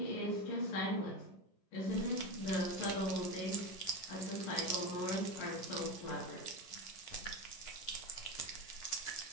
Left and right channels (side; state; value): right; late; 11 ms